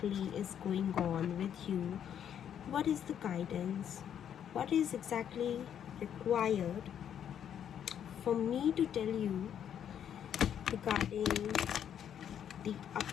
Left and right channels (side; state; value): right; quieter; 9.2 dB